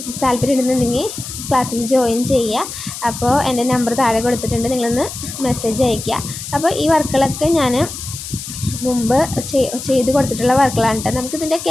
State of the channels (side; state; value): left; noise; hiss, 9 dB below the sound